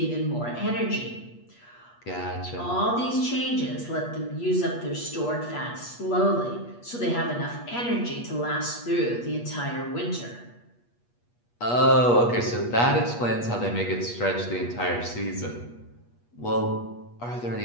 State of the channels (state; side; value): late; right; 8.4 ms